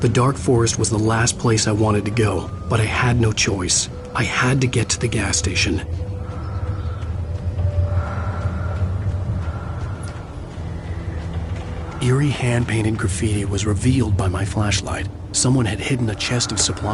The dark forest was the last place I wanted to go, but I had no choice. I had to get to the gas station. Eerie hand-painted graffiti was revealed by my flashlight. Someone had hidden a chest of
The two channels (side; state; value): both; identical; correlation 1.00